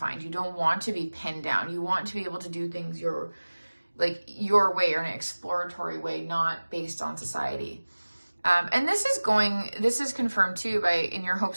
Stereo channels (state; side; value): inverted; both; correlation -1.00